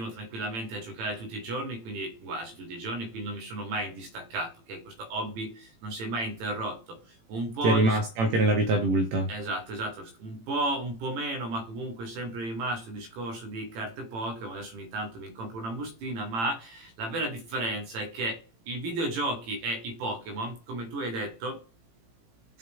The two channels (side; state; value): left; late; 18 ms